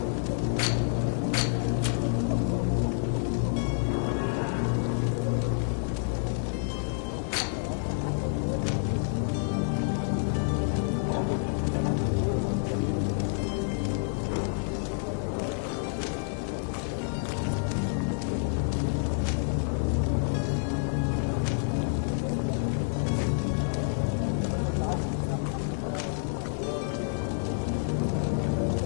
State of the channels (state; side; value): silent; right; 59 dB below the other